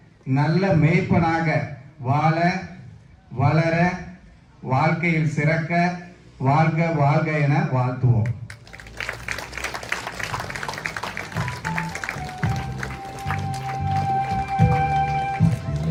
நல்ல மேய்ப்பனாக வாழ, வளர, வாழ்க்கையில் சிறக்க வாழ்க வாழ்க என வாழ்த்துவோம்.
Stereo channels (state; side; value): identical; both; correlation 1.00